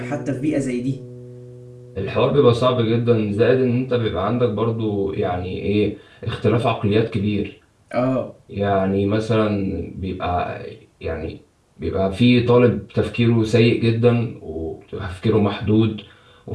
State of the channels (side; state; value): both; identical; correlation 1.00